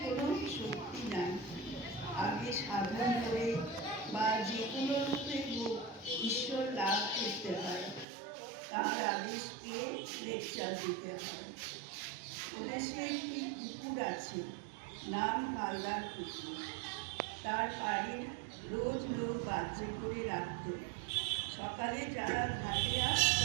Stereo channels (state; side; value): drops out; left; at 8.1 s